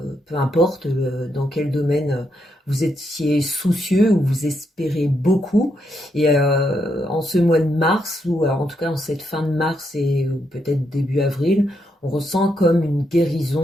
peu importe dans quel domaine vous étiez soucieux ou vous espérez beaucoup. Et en ce mois de mars, ou alors en tout cas en cette fin de mars et peut-être début avril, on ressent comme une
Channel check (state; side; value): normal; both; correlation 0.79